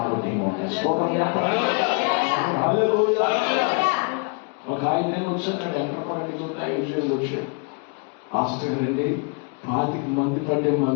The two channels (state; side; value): quieter; right; 35.1 dB